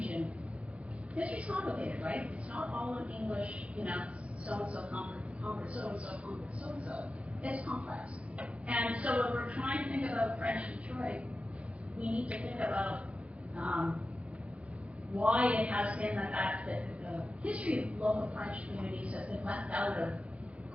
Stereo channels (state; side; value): late; left; 0.063 ms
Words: history's complicated, right? It's not all in English, you know, so-and-so conquered so-and-so conquered so-and-so. It's complex. And so when we're trying to think about French Detroit, we need to think about why it has been the fact that the history of local French communities has been left out of